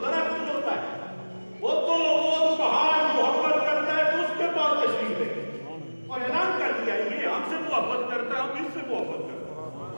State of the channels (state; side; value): inverted; both; correlation -1.00